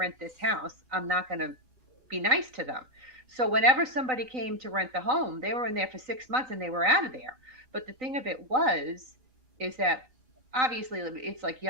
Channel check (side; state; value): left; late; 3.9 ms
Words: this house, I'm not going to be nice to them. So whenever somebody came to rent the home, they were in there for 6 months and they were out of there. But the thing of it is that obviously it's like